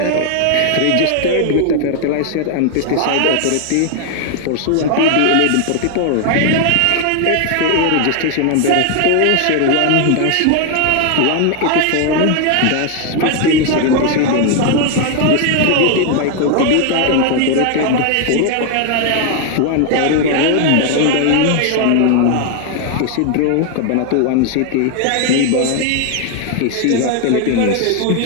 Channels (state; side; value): different; both; correlation 0.00